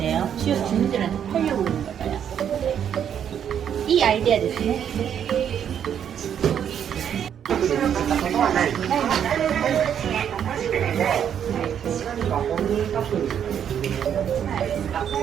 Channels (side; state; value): left; quieter; 8.9 dB